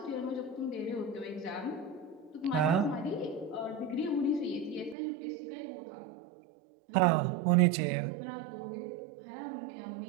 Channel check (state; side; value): drops out; left; at 5.0 s